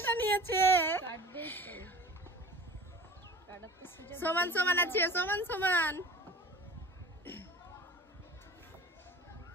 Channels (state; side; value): normal; both; correlation 0.41